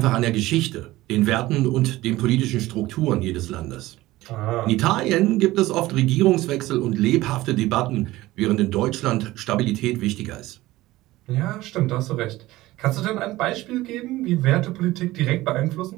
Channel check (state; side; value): quieter; left; 17.7 dB